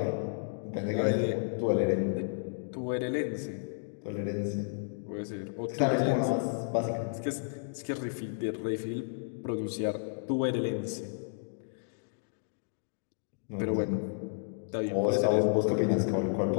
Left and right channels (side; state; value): right; silent; digital silence